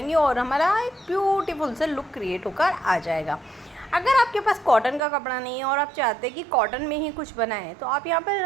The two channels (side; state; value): left; drops out; at 5.0 s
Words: और हमारा एक ब्यूटीफुल सा लुक क्रिएट होकर आ जाएगा। अगर आपके पास कॉटन का कपड़ा नहीं है और आप चाहते हैं कि कॉटन में ही कुछ बनाएं तो आप यहाँ पर